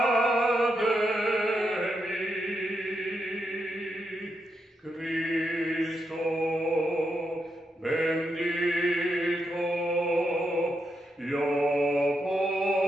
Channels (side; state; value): both; normal; correlation 0.83